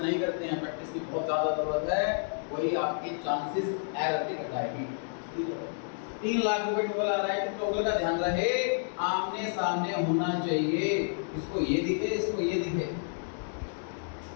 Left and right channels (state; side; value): silent; right; digital silence